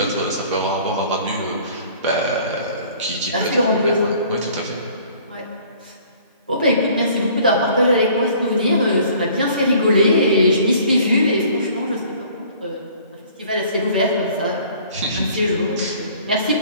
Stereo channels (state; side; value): inverted; both; correlation -0.53